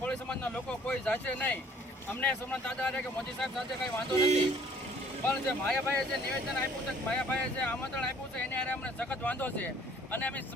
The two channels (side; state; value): both; normal; correlation 0.57